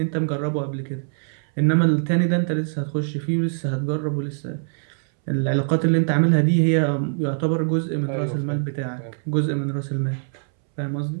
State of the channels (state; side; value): silent; left; 63 dB below the other